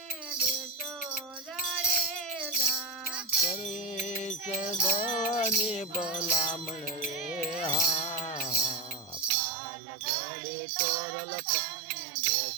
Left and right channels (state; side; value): drops out; left; at 9.3 s